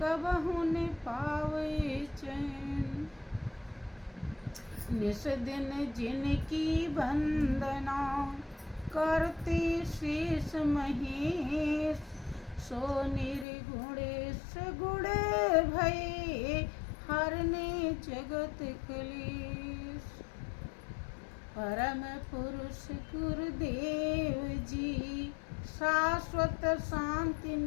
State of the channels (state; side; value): drops out; right; at 13.5 s